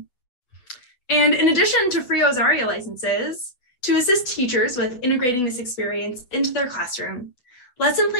And in addition to free Ozaria licenses, to assist teachers with integrating this experience into their classroom, lesson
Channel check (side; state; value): right; late; 8.0 ms